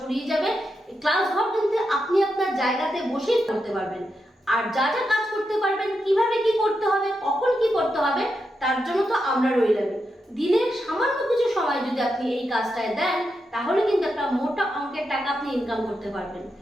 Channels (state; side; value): normal; both; correlation 0.86